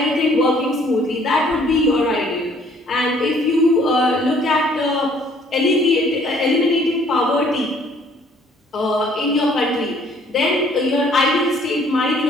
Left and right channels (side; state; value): both; normal; correlation 0.60